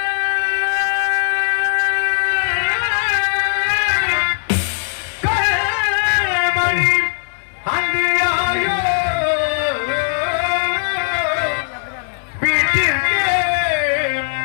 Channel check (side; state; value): right; silent; digital silence